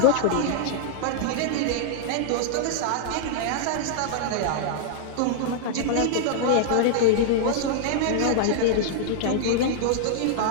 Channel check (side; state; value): both; different; correlation -0.01